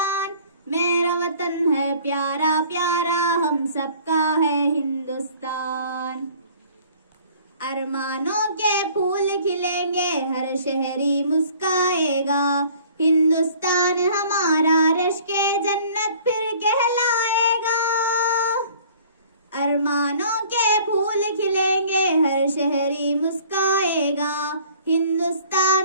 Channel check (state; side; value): inverted; both; correlation -0.52